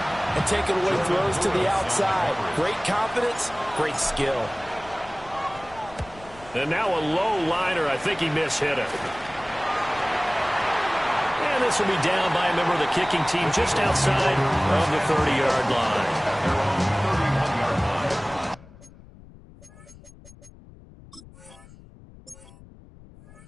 and taking away throws to the outside. Great confidence, great skill. And now a low liner. I think he mishit it. And this will be down by a member of the kicking team just outside of the 30-yard line.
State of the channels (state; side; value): noise; left; rumble, 21 dB below the sound